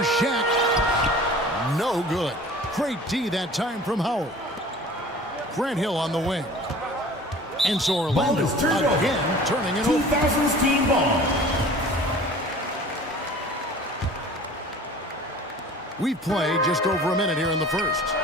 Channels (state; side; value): normal; both; correlation 0.44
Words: Shaq. No good. Great D that time from Howard. Grant Hill on the wing. And so Orlando Ball is turned over. again turning it over. 2000s team ball. We've played just over a minute here in the first.